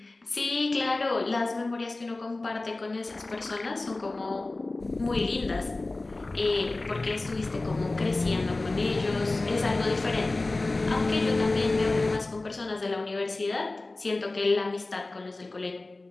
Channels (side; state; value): right; quieter; 3.1 dB